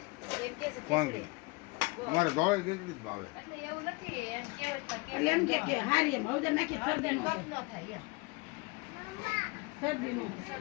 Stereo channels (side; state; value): right; quieter; 26.5 dB